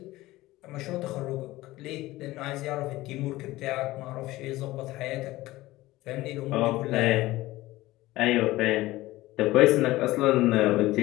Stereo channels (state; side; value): quieter; right; 17.8 dB